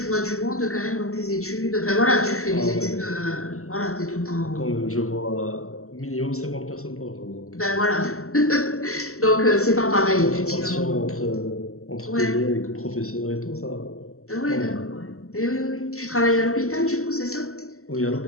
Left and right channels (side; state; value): right; late; 0.63 ms